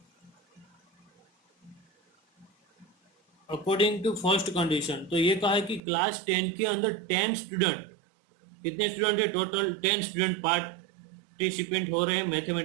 अकॉर्डिंग टू फर्स्ट कंडीशन तो ये कहा है कि क्लास 10 के अंदर 10 स्टूडेंट, कितने स्टूडेंट है टोटल 10 स्टूडेंट पार्टिसिपेंट हो रहे हैं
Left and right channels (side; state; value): left; drops out; at 5.8 s